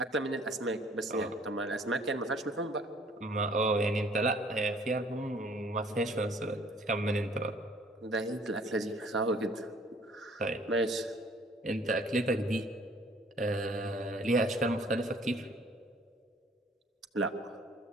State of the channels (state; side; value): normal; both; correlation 0.57